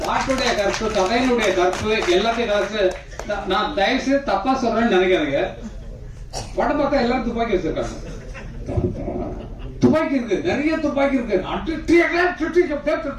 பாட்டுடைய கற்பு, கதையினுடைய கற்பு, எல்லாத்தையும் கற்பு. நான் தயவு செய்து தப்பா சொல்றேன்னு நினைக்காதீங்க. படம் பார்த்தா எல்லாரும் துப்பாக்கி வச்சிருக்காங்க. துப்பாக்கி இருக்கு, நிறைய துப்பாக்கி இருக்கு.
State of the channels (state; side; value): identical; both; correlation 1.00